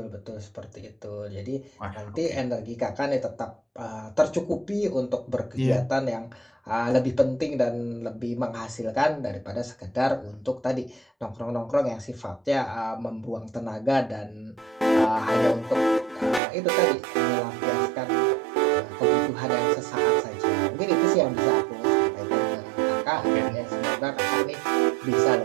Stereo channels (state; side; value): drops out; left; at 16.4 s